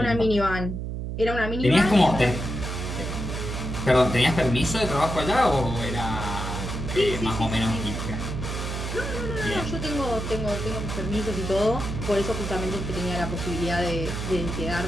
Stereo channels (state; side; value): noise; right; hum, 4 dB below the sound